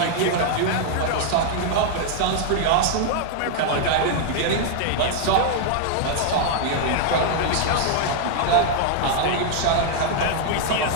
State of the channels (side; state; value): both; different; correlation 0.00